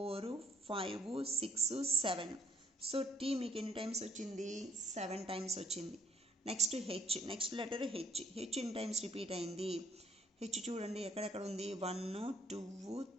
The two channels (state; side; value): normal; both; correlation 0.66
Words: 5 6 7 సో టీ మీకు ఎన్ని టైమ్స్ వచ్చింది 7 టైమ్స్ వచ్చింది next H next letter H ఎన్ని టైమ్స్ రిపీట్ అయింది హెచ్ చూడండి ఎక్కడెక్కడ ఉంది 1 2